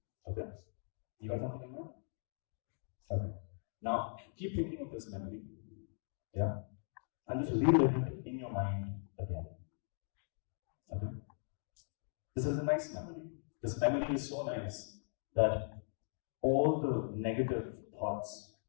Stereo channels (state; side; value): silent; right; digital silence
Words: Okay? You got something in mind? Okay. Now, keep thinking of this memory. Yeah? And just relive it in your mind again. Okay? This is a nice memory. This memory is so nice that all the negative thoughts